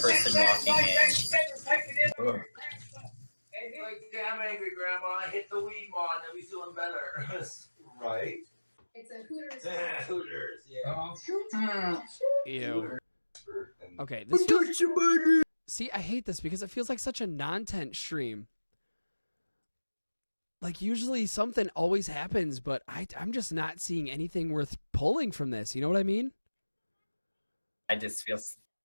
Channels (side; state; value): both; inverted; correlation -1.00